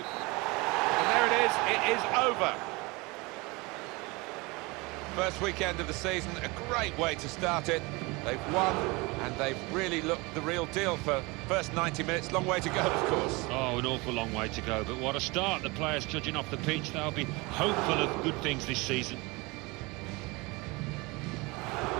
And there it is over. First weekend of the season, a great way to start it. They've won, and they've really looked the real deal for first 90 minutes. Long way to go, of course. Oh, an awful long way to go, but what a start. The players judging off the pitch, they'll be hopeful of good things this season.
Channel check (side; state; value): left; quieter; 25.2 dB